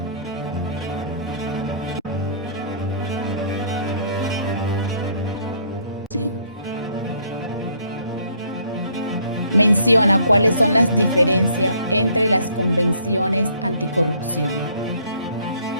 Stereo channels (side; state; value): both; inverted; correlation -0.62